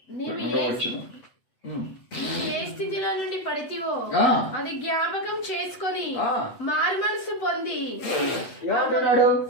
ఏ స్థితిలో నుండి పడితివో అది జ్ఞాపకం చేసుకొని మారు మనసు పొంది. ఏమంటున్నాడు?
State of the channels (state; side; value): late; right; 8.1 ms